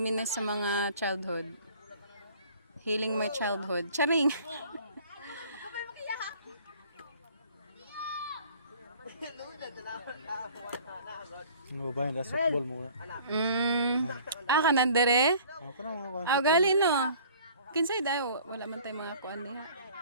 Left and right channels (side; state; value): both; inverted; correlation -0.51